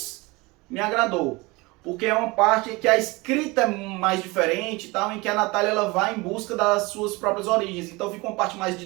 me agradou, porque é uma parte que a escrita é mais diferente, tal, em que a Natália ela vai em busca das suas próprias origens. Então fica uma parte mais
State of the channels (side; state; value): left; quieter; 23.9 dB